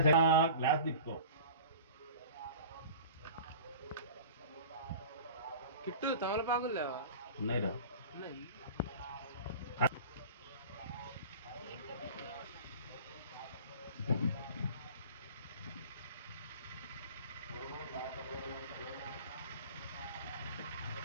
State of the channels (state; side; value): inverted; both; correlation -0.39